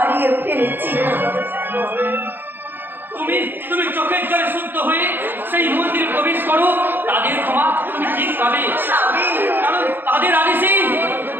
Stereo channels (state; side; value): late; left; 0.096 ms